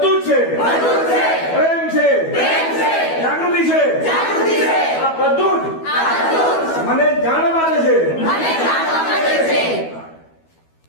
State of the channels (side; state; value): right; late; 12 ms